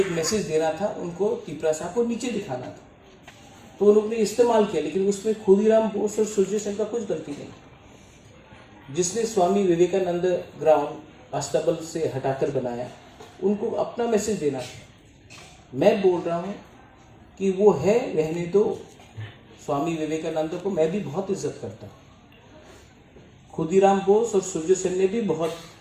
मैसेज देना था, उनको त्रिपुरा साहब को नीचे दिखाना था, तो उन्होंने इस्तेमाल किया। लेकिन उसमें खुदीराम बोस और सूर्य सेन का कुछ गलती नहीं। जिसने स्वामी विवेकानंद ग्राउंड अस्तबल से हटाकर बनाया, उनको अपना मैसेज देना था। मैं बोल रहा हूँ कि वो है, रहने दो। स्वामी विवेकानंद को मैं भी बहुत इज्जत करता हूँ। खुदीराम बोस और सूर्य सेन ने भी बहुत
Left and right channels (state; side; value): identical; both; correlation 1.00